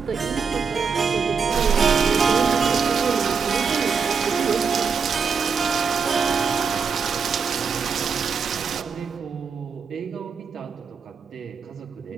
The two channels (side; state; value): left; quieter; 5.7 dB